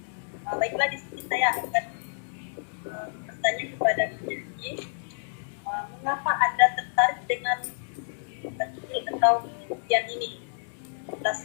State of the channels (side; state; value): right; silent; digital silence